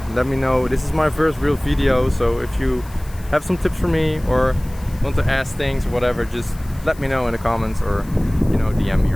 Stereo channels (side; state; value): left; noise; hiss, 23 dB below the sound